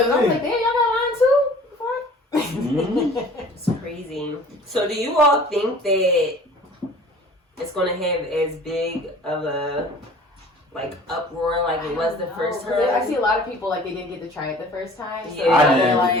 I was like, damn, y'all got line too? Fuck. It's crazy. So, do you all think that it's going to have as big of a uproar like it was the first time? I see a lot of people like they didn't get to try it the first time. So Yeah. I they're didn't like,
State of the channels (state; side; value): normal; both; correlation 0.47